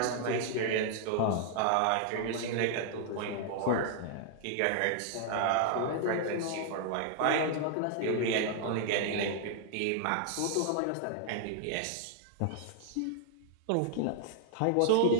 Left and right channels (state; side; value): different; both; correlation 0.00